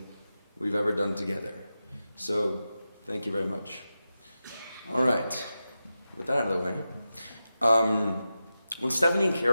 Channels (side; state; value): both; inverted; correlation -0.92